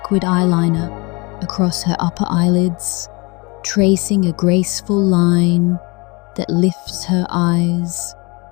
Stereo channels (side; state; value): right; quieter; 27.5 dB